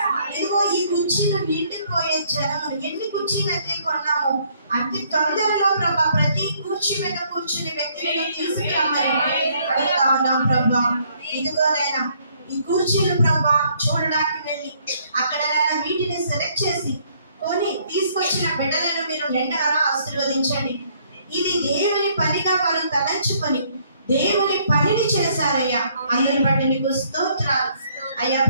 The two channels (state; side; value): inverted; both; correlation -0.66